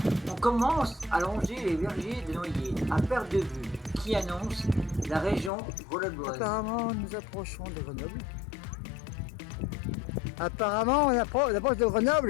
On commence à longer les vergers de noyer à perte de vue qui annoncent la région grenobloise. Apparemment, nous approchons de Grenoble. Apparemment, on approche de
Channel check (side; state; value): right; drops out; at 5.5 s